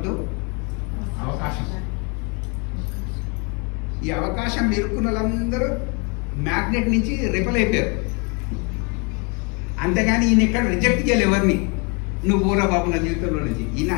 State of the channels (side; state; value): right; quieter; 31.5 dB